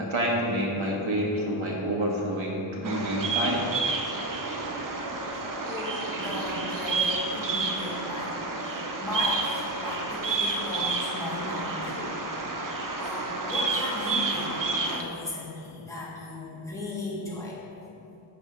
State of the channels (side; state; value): both; normal; correlation 0.16